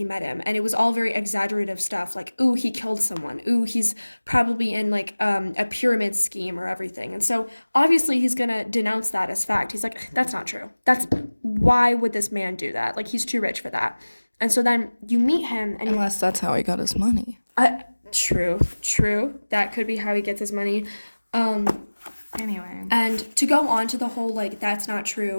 met him, and it was all very exaggerative stuff like, "Ooh, he killed someone. Ooh, he's probably in like a pyramid scheme or everything." And so obviously he's gonna denounce that as fact. He's like, "That's not true. That's why would this man do that? Like he's too rich for that." And so then you meet him and Unless that's how he got his money. true. That could be how he gets his money. Um, Anyway. and to go on to the whole like that's not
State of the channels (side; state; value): both; inverted; correlation -1.00